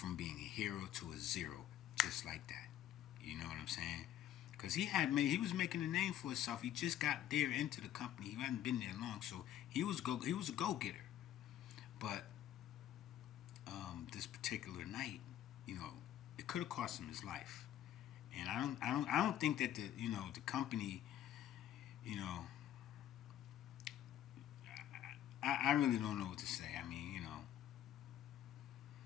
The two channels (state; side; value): quieter; right; 11.7 dB